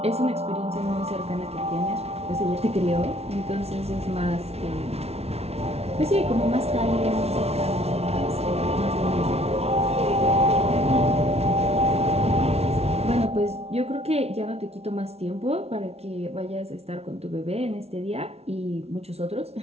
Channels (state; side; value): late; left; 0.30 ms